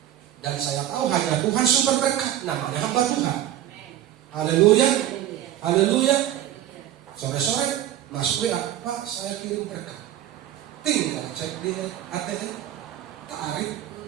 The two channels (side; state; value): left; quieter; 12.2 dB